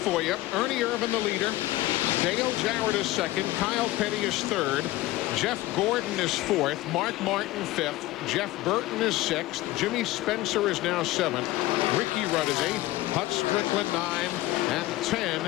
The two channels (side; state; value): right; quieter; 17.6 dB